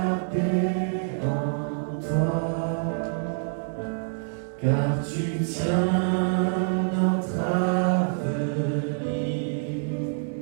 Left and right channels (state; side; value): silent; left; digital silence